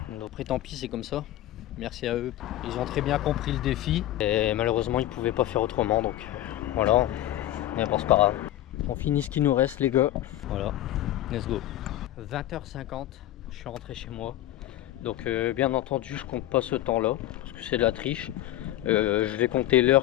Donc après tant pis, c'est comme ça. Merci à eux. Ils ont très bien compris le défi. Et malheureusement ils pouvaient pas faire autrement. Donc voilà. Mais bon, c'est pas grave. On finit ce qui nous reste les gars. Voilà. Let's go. 20h50, je suis rentré chez moi. Donc bien entendu je compte pas ce temps là parce que c'est de la triche. Je vais compter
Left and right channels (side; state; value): right; quieter; 14.0 dB